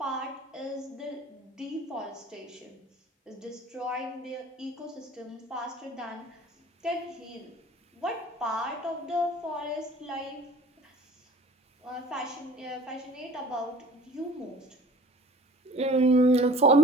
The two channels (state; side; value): normal; both; correlation 0.46